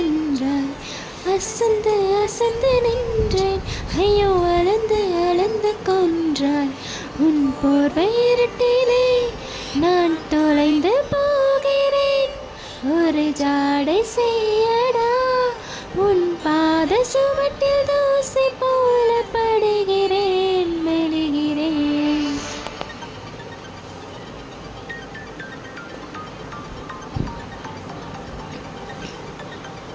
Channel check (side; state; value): both; identical; correlation 1.00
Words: அசந்து அசந்து நின்றேன் ஐயோ அளந்து அளந்து கொன்றாய் உன் போர்வை இருட்டிலே நான் தொலைந்து போகிறேன் ஒரு ஜாடை செய்யடா உன் பாத சுவட்டில் தூசி போல படுகிறேன் மெழுகிறேன்.